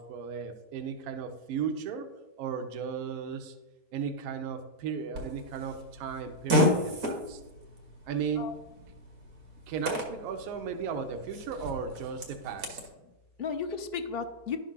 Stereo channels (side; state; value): left; late; 4.7 ms